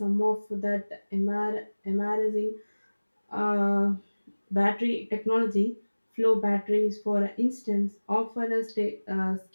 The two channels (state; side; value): inverted; both; correlation -1.00